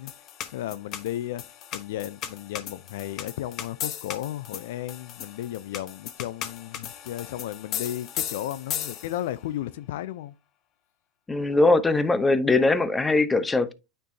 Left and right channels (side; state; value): right; quieter; 3.8 dB